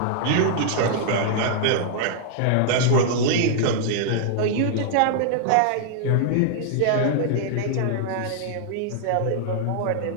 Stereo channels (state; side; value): different; both; correlation -0.01